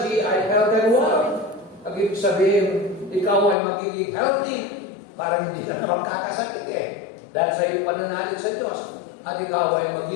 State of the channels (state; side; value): drops out; right; at 3.6 s